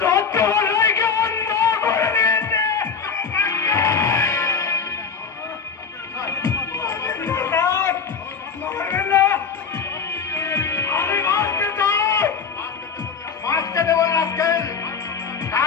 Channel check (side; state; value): right; quieter; 6.0 dB